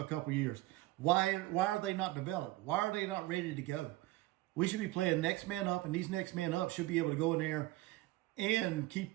couple of years. Why are they not developed? Why are they not ready to go? We should be playing next man up, and these next man up should be able to go in there and keep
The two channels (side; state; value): left; quieter; 18.5 dB